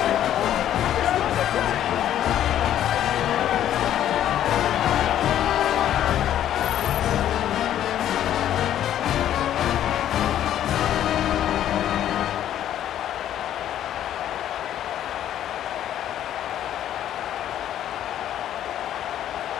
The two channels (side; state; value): right; quieter; 11.3 dB